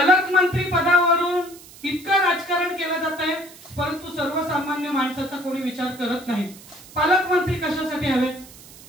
पदावरून इतकं राजकारण केलं जात आहे परंतु सर्वसामान्य माणसाचा कोणी विचार करत नाही। पालकमंत्री कशासाठी हवे?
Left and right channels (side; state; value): right; noise; hiss, 20 dB below the sound